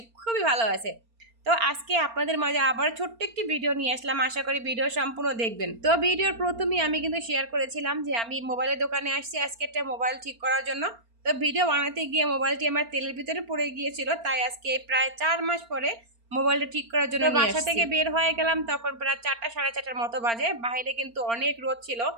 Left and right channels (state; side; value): late; left; 4.4 ms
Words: খুবই ভালো আছে। তো আজকে আপনাদের মাঝে আবার ছোট্ট একটি ভিডিও নিয়ে আসলাম, আশা করি ভিডিও সম্পূর্ণ দেখবেন। তো ভিডিওর প্রথমেই আমি কিন্তু শেয়ার করেছিলাম যে আমি মোবাইলের দোকানে আসছি আজকে একটা মোবাইল ঠিক করার জন্য। তো ভিডিও বানাতে গিয়ে মোবাইলটি আমার তেলের ভিতরে পড়ে গিয়েছিল, তাই আজকে প্রায় 4 মাস পরে মোবাইলটা ঠিক করার জন্য বাসা থেকে বের হয়ে গেলাম। তখন প্রায় 4টা সাড়ে 4টার মতো বাজে। বাইরে কিন্তু অনেক রোদ ছিল